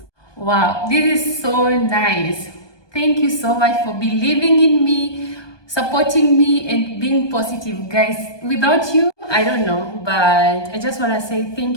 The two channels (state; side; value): late; right; 1.2 ms